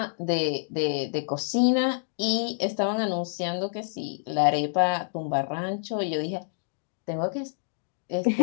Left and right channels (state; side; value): silent; right; digital silence